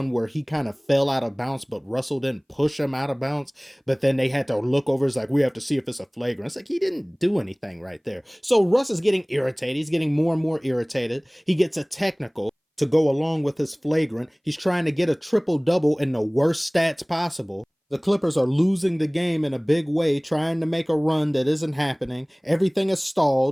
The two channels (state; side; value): identical; both; correlation 1.00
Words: where he kind of fell out of bounds, but Russell didn't push him out of bounds. But then they had to look over. It's like, we have to see if it's a flagrant. It's like, he didn't do anything right there. So Russ is getting irritated. He's getting more and more irritated. He gets a technical to go along with his flagrant. He's trying to get a triple-double in the worst stats possible. The Clippers are losing the game in a big way, trying to make a run that isn't happening. Everything is